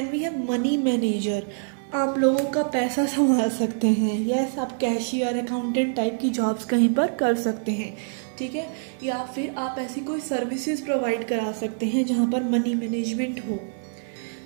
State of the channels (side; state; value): left; silent; 59 dB below the other